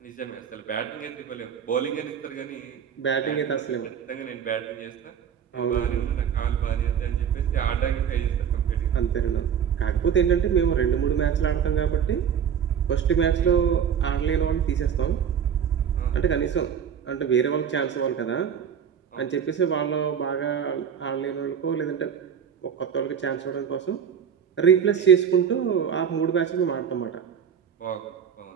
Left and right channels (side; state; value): left; quieter; 8.0 dB